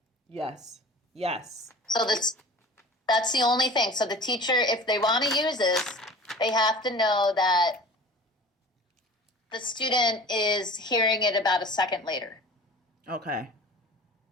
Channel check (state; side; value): normal; both; correlation 0.41